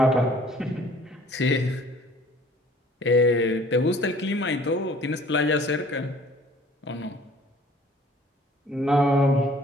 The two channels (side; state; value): both; normal; correlation 0.53